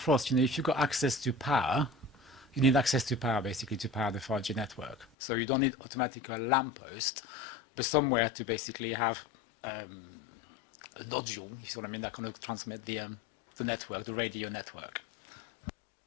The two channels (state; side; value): drops out; right; at 5.1 s